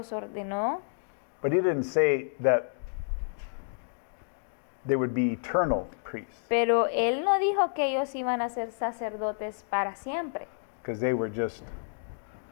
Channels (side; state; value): right; silent; digital silence